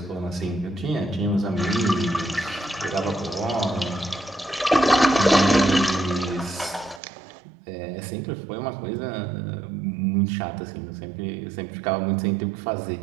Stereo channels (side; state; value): left; drops out; at 7.0 s